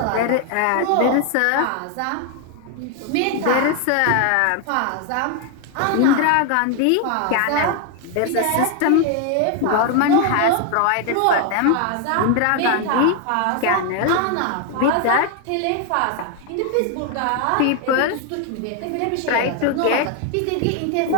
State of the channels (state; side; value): different; both; correlation 0.01